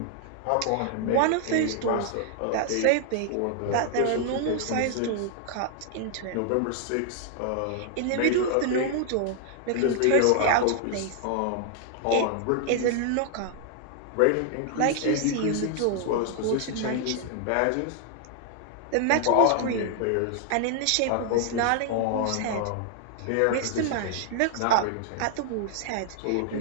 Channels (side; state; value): both; different; correlation 0.00